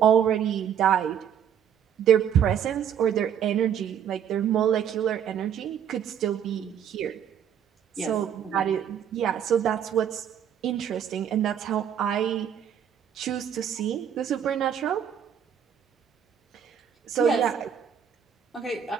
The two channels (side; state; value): left; quieter; 8.7 dB